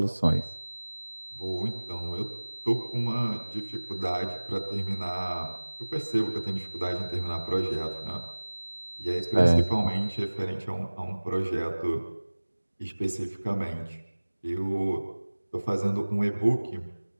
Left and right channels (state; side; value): inverted; both; correlation -1.00